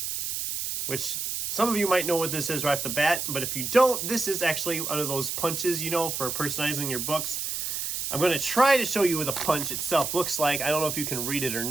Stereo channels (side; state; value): right; noise; hiss, 3 dB below the sound